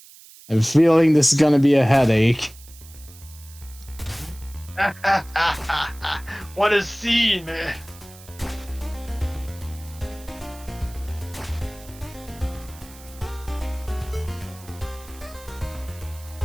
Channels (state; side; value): noise; right; hiss, 21 dB below the sound